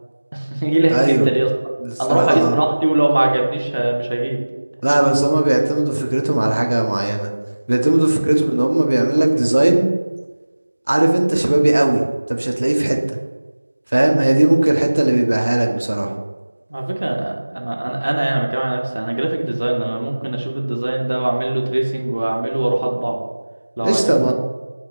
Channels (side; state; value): both; inverted; correlation -1.00